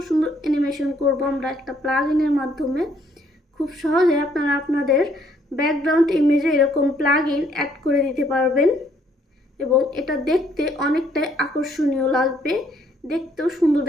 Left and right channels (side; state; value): both; normal; correlation 0.66